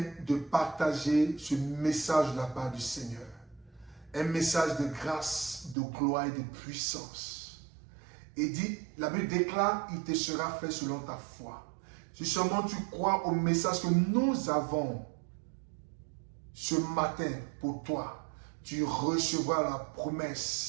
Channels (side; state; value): left; drops out; at 5.8 s